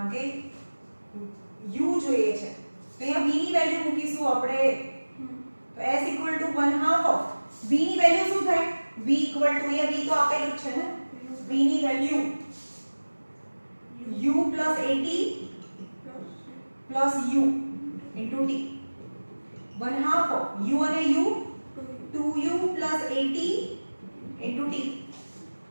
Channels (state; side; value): inverted; both; correlation -1.00